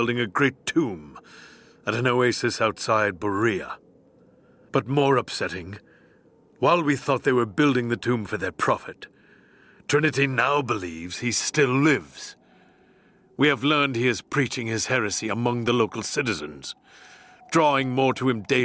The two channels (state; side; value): identical; both; correlation 1.00